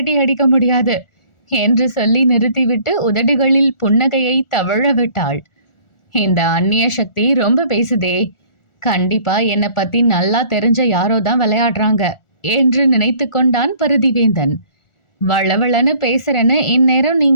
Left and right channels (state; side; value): late; right; 1.4 ms